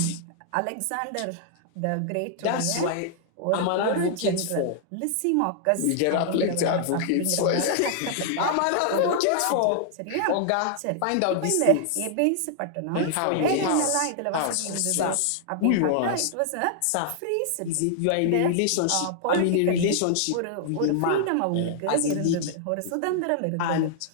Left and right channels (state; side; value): different; both; correlation -0.01